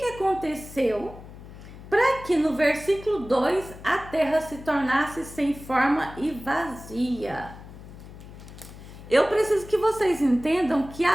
aconteceu para que no versículo 2 a terra se tornasse sem forma e vazia? Eu preciso que vocês entendam que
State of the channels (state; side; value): noise; left; hum, 16 dB below the sound